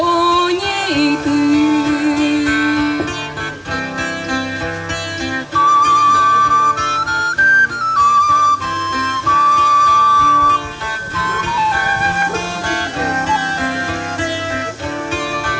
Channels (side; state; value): both; identical; correlation 1.00